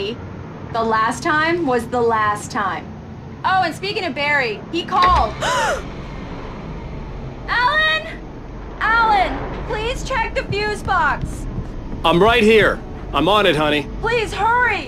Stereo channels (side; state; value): both; identical; correlation 1.00